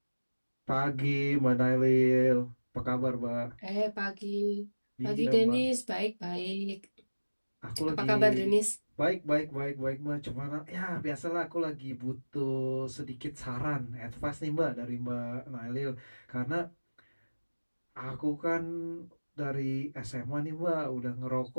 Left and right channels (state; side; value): inverted; both; correlation -1.00